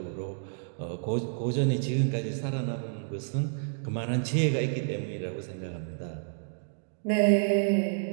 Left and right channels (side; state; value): left; silent; digital silence